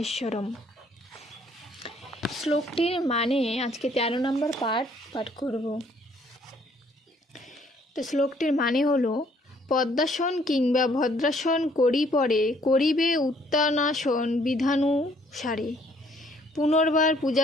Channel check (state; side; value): normal; both; correlation 0.63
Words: শ্লোকটির মানে আজকে 13 নম্বর পাঠ করব। তো শ্লোকটির মানে হলো: পদ্মাসন কিংবা ভদ্রাসন করিবে উত্তানাসন বিধানুসারে, পুনর্বার